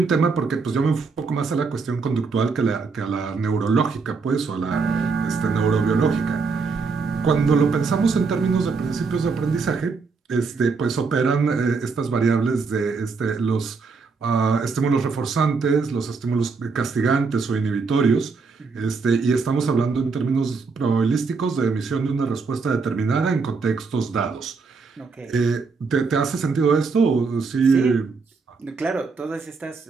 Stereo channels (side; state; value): left; quieter; 4.7 dB